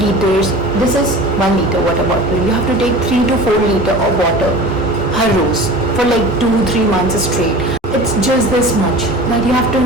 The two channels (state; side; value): normal; both; correlation 0.38